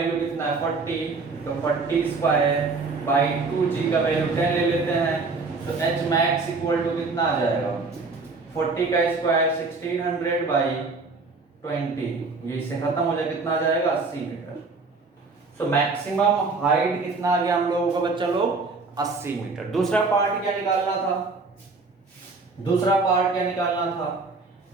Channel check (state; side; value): quieter; left; 4.0 dB